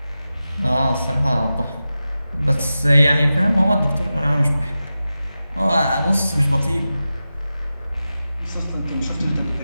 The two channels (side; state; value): both; inverted; correlation -0.93